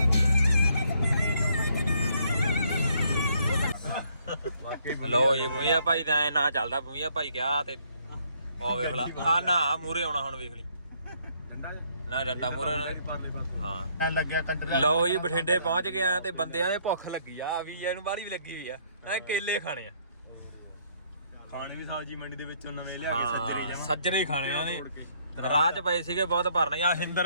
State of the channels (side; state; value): both; inverted; correlation -0.67